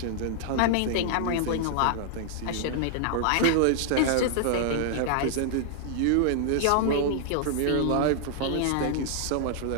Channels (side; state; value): both; different; correlation -0.01